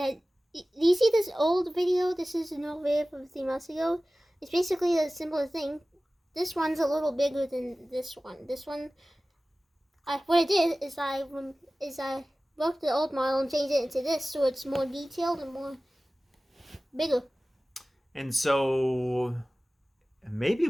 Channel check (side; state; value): both; normal; correlation 0.97